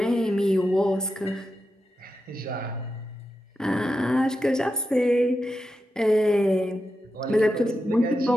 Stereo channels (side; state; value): both; normal; correlation 0.89